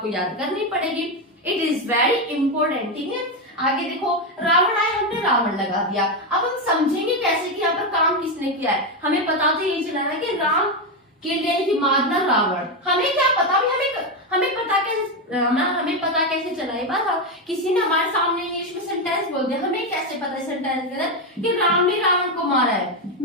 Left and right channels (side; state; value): both; normal; correlation 0.09